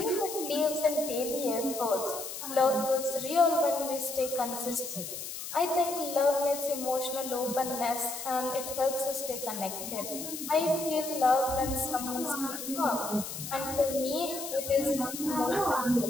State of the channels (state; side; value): noise; left; hiss, 8 dB below the sound